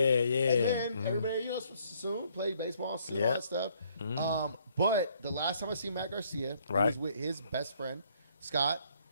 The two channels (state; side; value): inverted; both; correlation -0.66